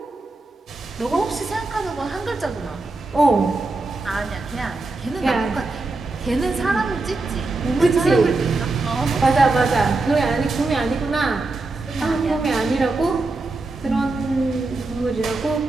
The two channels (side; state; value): left; quieter; 3.3 dB